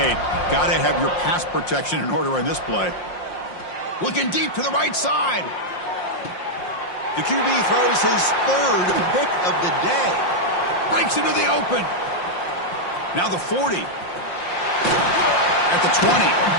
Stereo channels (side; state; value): right; late; 5.6 ms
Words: Got to have your pass protection in order on this play. Looking deep to the right side. The QB throws his 3rd pick of the day. Breaks into the open. Now the 40. At the 20.